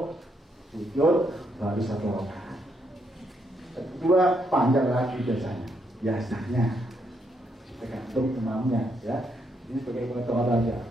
sujud, baru satu rakaat. Kedua panjang lagi biasanya. Tergantung imamnya ya. Ini sebagai pengetahuan aja.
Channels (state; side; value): normal; both; correlation 0.77